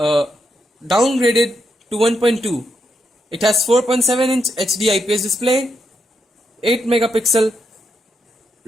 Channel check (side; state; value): both; normal; correlation 0.81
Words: to 1.2. It has 4.7-inch HD IPS display, 8 megapixel